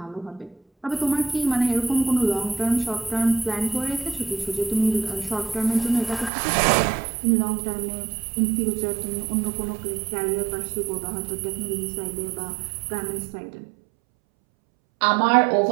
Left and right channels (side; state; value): left; drops out; at 6.3 s